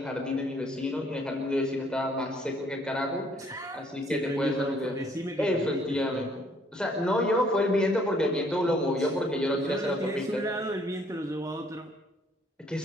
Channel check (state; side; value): normal; both; correlation 0.63